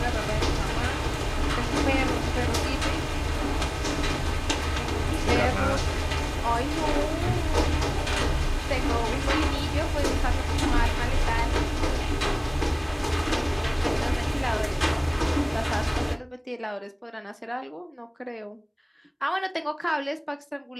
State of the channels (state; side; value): identical; both; correlation 1.00